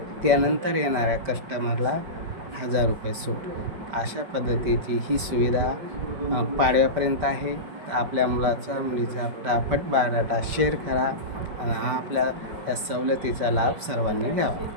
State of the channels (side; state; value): left; late; 5.1 ms